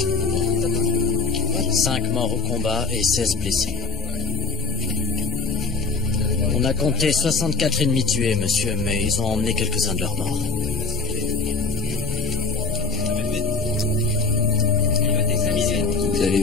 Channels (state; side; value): quieter; right; 4.7 dB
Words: 5 morts au combat et 16 blessés. On a compté 64 ennemis tués, monsieur, mais ils ont emmené quelques-uns de leurs morts. Vous